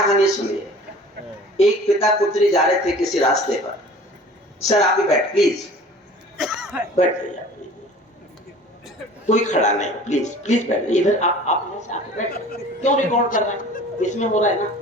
सुनिए। एक पिता पुत्री जा रहे थे किसी रास्ते पर। सर आप भी बैठ, प्लीज बैठ जाइए, कोई खड़ा नहीं, प्लीज प्लीज बैठ जाइए इधर। आप बैठ, क्यों रिकॉर्ड कर रहे हैं, इसमें हो रहा है ना।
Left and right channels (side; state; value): both; normal; correlation 0.45